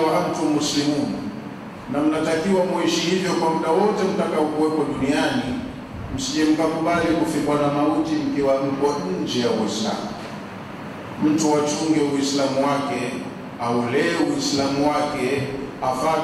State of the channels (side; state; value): both; identical; correlation 1.00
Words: antum muslimun, na mnatakiwa muishi hivyo kwa muda wote mtakaokuwepo duniani. Msije mkakubali kufikwa na mauti mkiwa mko nje ya Uislamu. Mtu achunge Uislamu wake, aulee Uislamu wake,